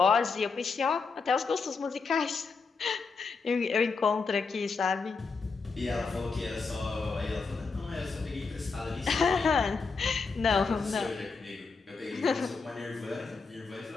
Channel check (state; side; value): quieter; right; 4.7 dB